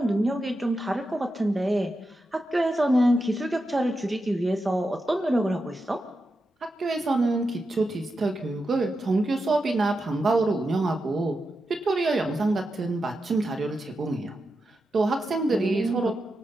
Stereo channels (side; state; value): both; normal; correlation 0.88